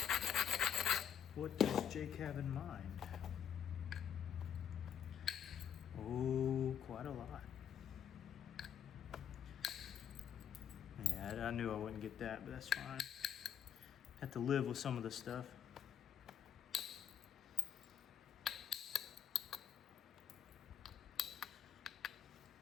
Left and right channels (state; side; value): quieter; right; 8.7 dB